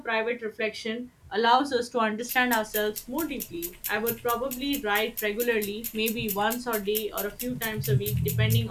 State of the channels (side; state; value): both; identical; correlation 1.00